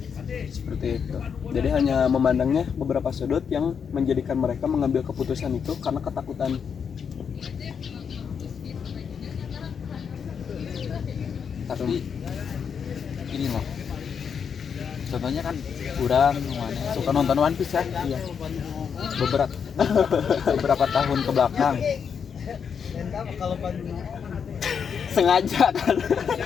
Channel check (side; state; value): right; quieter; 6.9 dB